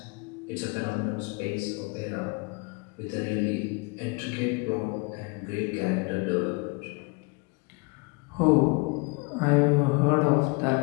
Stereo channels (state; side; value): quieter; right; 29.6 dB